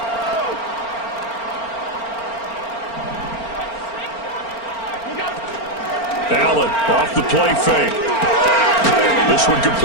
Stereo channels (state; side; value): late; right; 4.4 ms